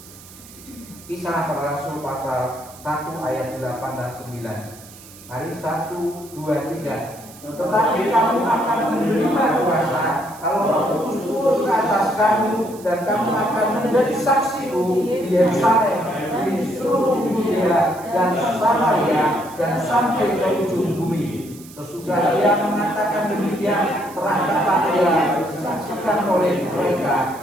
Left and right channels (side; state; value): right; noise; hiss, 20 dB below the sound